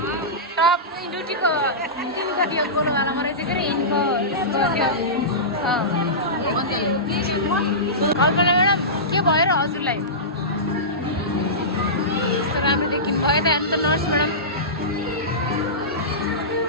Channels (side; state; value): both; normal; correlation -0.18